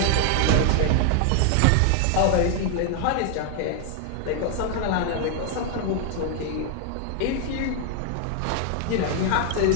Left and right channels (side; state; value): both; different; correlation 0.00